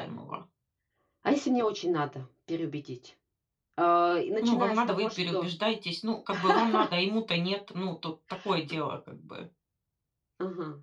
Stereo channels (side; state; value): both; identical; correlation 1.00